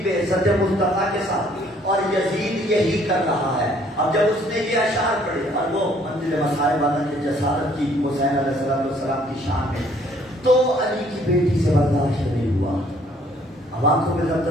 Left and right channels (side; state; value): both; normal; correlation 0.62